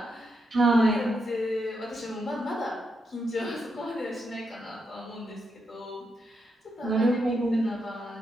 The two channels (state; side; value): normal; both; correlation 0.82